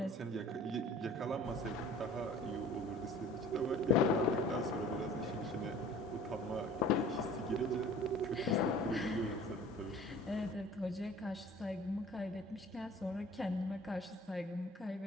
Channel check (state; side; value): normal; both; correlation 0.46